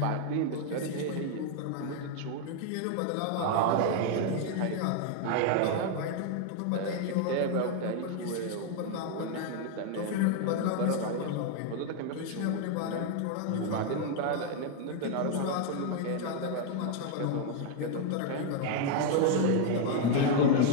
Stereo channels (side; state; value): both; different; correlation 0.00